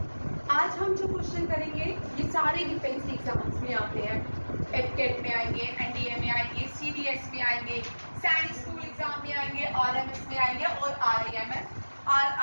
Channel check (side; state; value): both; inverted; correlation -1.00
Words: आज हम जो क्वेश्चन करेंगे ये सारे डिफेंस एग्जाम्स में आते हैं। एफकेट में आएंगे, एनडीए में आएंगे, सीडीएस में आएंगे, सैनिक स्कूल एग्जाम में आएंगे, आरएमएस में आएंगे और